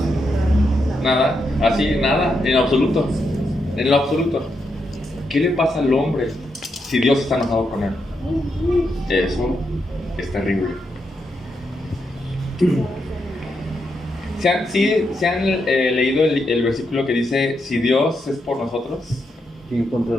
Nada. Así, nada. En absoluto. En lo absoluto. ¿Qué le pasa al hombre si Dios está enojado con él? Eso es terrible. ¿Se han leído el versículo que dice, si Dios es por nosotros, ¿Quién contra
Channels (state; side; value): normal; both; correlation 0.82